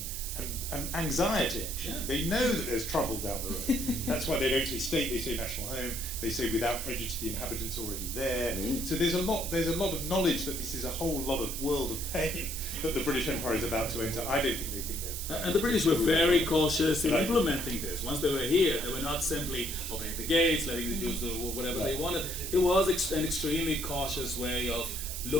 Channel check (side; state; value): right; noise; hiss, 6 dB below the sound